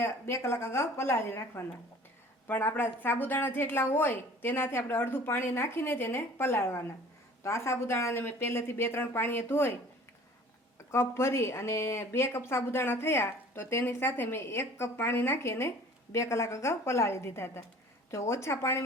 2 કલાક અગાઉ પલાળી રાખવાના, પણ આપણા સાબુદાણા જેટલા હોય તેનાથી આપણે અડધું પાણી નાખીને જ એને પલાળવાના। તો આ સાબુદાણાને મેં પહેલેથી 2-3 પાણીએ ધોઈ કપ ભરી અને 2 કપ સાબુદાણા થયા તો તેની સાથે મેં 1 કપ પાણી નાખી અને 2 કલાક અગાઉ પલાળી દીધા હતા। જો ઓછા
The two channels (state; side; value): normal; both; correlation 0.48